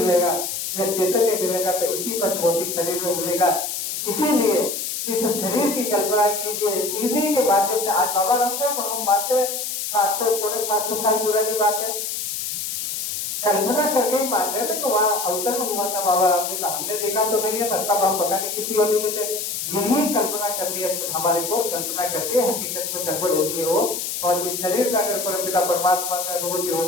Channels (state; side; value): noise; left; hiss, 4 dB below the sound